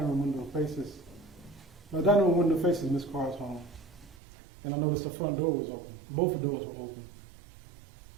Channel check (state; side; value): drops out; left; at 4.2 s